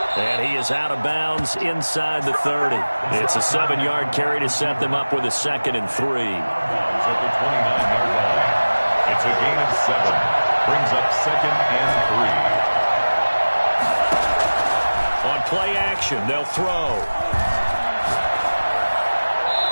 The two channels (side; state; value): both; inverted; correlation -1.00